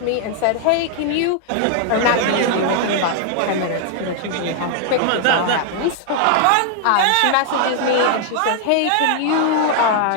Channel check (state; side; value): different; both; correlation 0.00